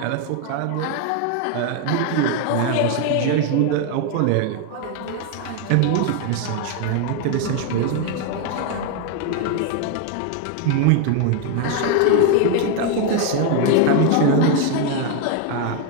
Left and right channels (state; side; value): different; both; correlation 0.01